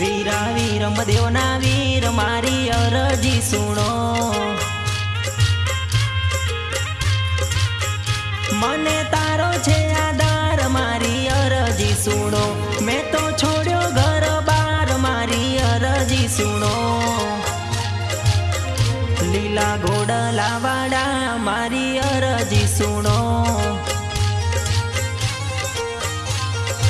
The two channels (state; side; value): identical; both; correlation 1.00